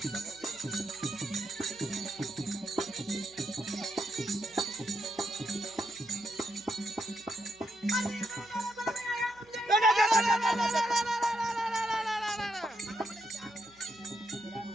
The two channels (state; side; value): noise; right; hum, 29 dB below the sound